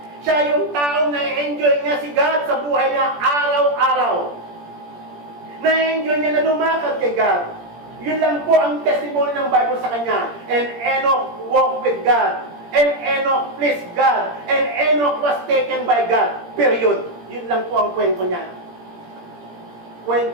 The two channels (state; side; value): late; left; 17 ms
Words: Siya yung taong na-enjoy niya si God sa buhay niya araw-araw. Na-enjoy niya na lumakad kay God. Yun lang po ang testimony ng Bible sa kanya. And Enoch walked with God. And Enoch pleased God. And Enoch was taken by God. Period. Yun lang po ang kwento niya.